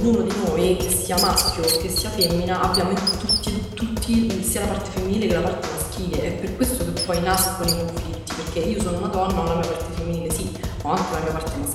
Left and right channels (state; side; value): identical; both; correlation 1.00